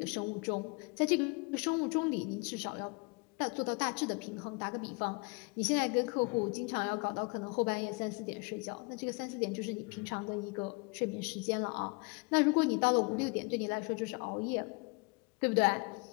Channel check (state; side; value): quieter; right; 29.6 dB